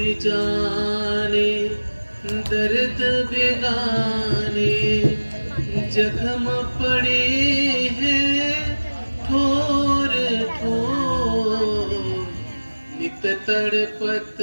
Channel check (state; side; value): inverted; both; correlation -1.00